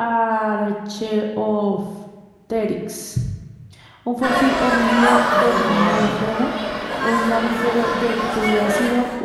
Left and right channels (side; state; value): both; identical; correlation 1.00